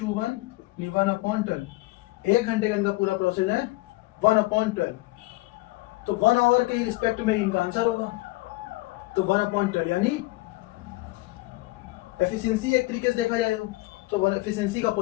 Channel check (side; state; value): right; quieter; 21.1 dB